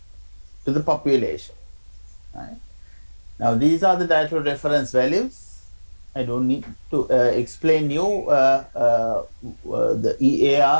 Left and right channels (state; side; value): inverted; both; correlation -1.00